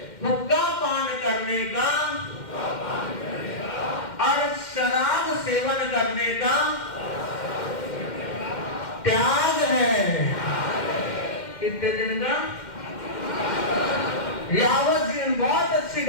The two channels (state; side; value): late; right; 2.1 ms